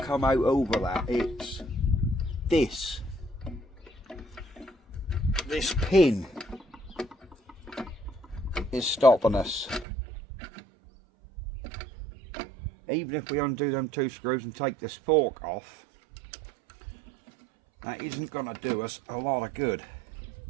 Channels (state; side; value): drops out; left; at 9.9 s